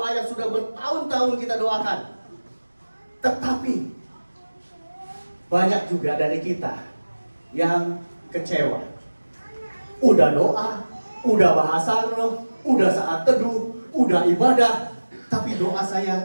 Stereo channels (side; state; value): both; inverted; correlation -1.00